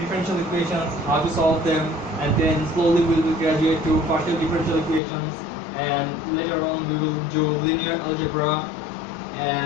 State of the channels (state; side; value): drops out; right; at 5.0 s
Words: equations, how to solve them, and then slowly we will graduate to partial differential equations, and later on we will do linear algebra,